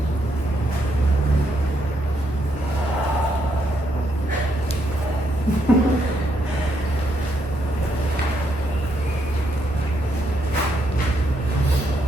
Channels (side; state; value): both; normal; correlation 0.77